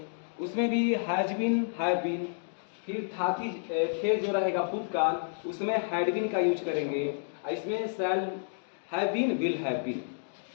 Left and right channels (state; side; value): silent; right; digital silence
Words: उसमें भी हैज बीन, हैव बीन, फिर था थी थे जो रहेगा भूतकाल, उसमें हैड बीन का यूज करेंगे। इसमें shall have been, will have been,